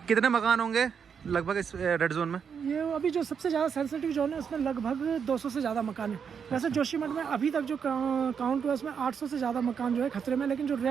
कितने मकान होंगे लगभग इस रेड जोन में? ये अभी जो सबसे ज़्यादा सेंसिटिव जोन है उसमें लगभग 200 से ज़्यादा मकान है। वैसे जोशीमठ में अभी तक जो काउंट हुआ उसमें 800 से ज़्यादा मकान जो है खतरे में, लेकिन जो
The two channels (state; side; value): quieter; left; 6.9 dB